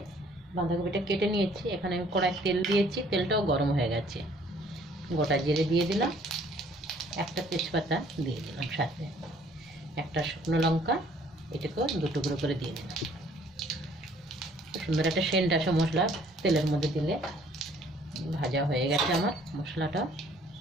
বাঁধাকপিটা কেটে নিয়েছি। এখানে আমি কড়াই তেল দিয়েছি, তেলটাও গরম হয়ে গেছে। গোটা জিরে দিয়ে দিলাম, একটা তেজপাতা দিয়ে দিলাম, সাথে একটা শুকনো লঙ্কা, এটাকেও দু টুকরো করে দিয়ে দিলাম। সুন্দর একটা সেন্ট আসে মশলা তেলের মধ্যে দিলে। ভাজা হয়ে গেছে আমার মশলাটা।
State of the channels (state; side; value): normal; both; correlation 0.59